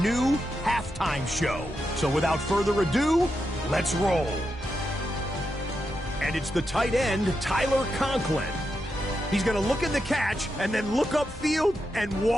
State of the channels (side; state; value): both; normal; correlation 0.86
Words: new halftime show. So without further ado, let's roll. And it's the tight end, Tyler Conklin. He's going to look at the catch and then look upfield and